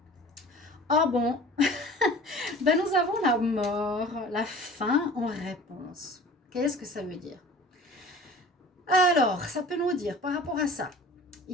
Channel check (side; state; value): both; normal; correlation 0.43